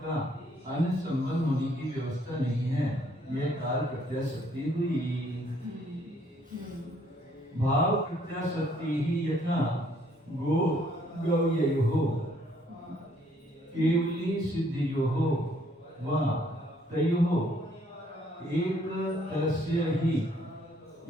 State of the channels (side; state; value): both; normal; correlation 0.65